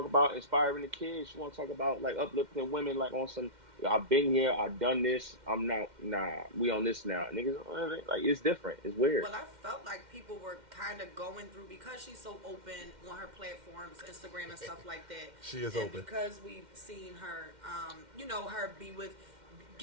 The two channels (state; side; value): late; left; 2.1 ms